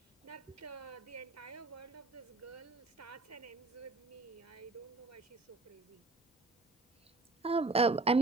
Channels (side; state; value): left; quieter; 3.4 dB